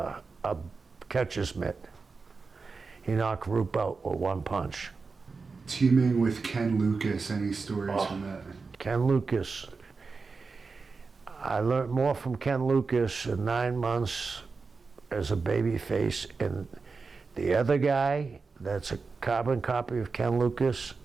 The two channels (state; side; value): quieter; left; 4.5 dB